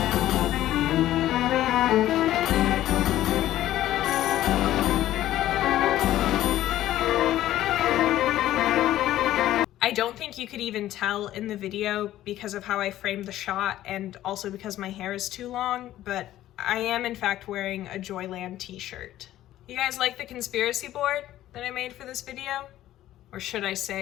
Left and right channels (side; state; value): right; quieter; 13.7 dB